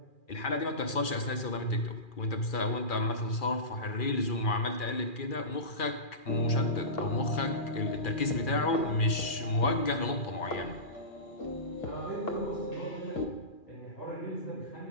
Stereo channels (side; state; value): right; late; 2.4 ms